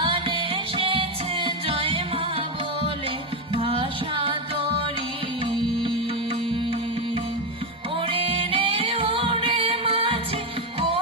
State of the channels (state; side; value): normal; both; correlation 0.08